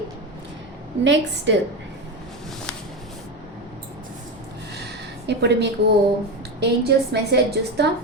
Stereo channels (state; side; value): normal; both; correlation 0.17